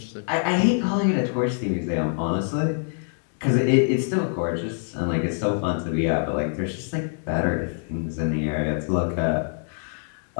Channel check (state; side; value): silent; right; digital silence